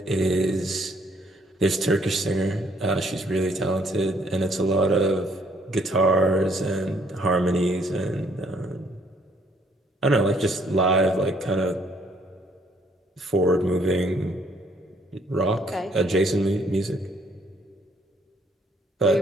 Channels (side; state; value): both; normal; correlation 0.65